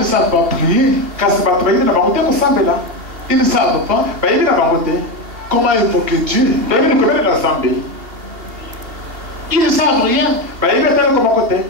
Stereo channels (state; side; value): late; left; 2.6 ms